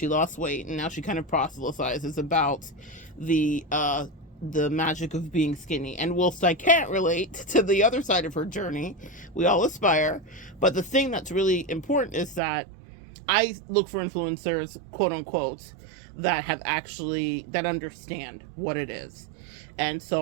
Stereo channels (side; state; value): left; drops out; at 12.4 s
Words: lost weight, and now she kind of proselytizes about the magic of being skinny. And whilst I can't relate to the other side of her journey, we all aspire. But the thing that's really important is that I look for influencers, quote unquote, that understand what it is. And